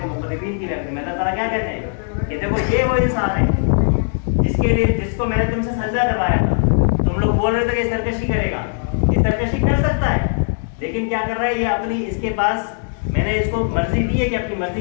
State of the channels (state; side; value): silent; right; digital silence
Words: مقربین کی محفل میں. اللہ تعالیٰ کیا کہتے ہیں کہ دیکھو یہ وہ انسان ہے جس کو میں نے تم سے سجدہ کروایا تھا. تم لوگ بول رہے تھے کہ سرکشی کرے گا، یہ سرکشی کر سکتا ہے، لیکن کیا کر رہا ہے یہ اپنی، اس کے پاس میں نے اس کو مرضی دی ہے کہ اپنی